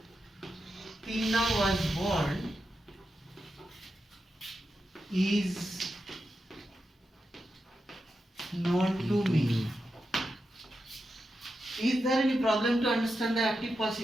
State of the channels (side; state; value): both; normal; correlation 0.88